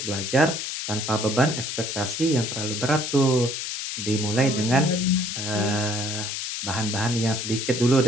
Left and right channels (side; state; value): left; noise; hiss, 4 dB below the sound